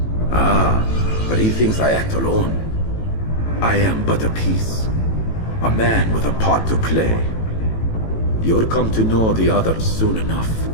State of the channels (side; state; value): right; late; 18 ms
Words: Ah, but he thinks I act alone. I am but a piece. A man with a part to play. You'll come to know the others soon enough.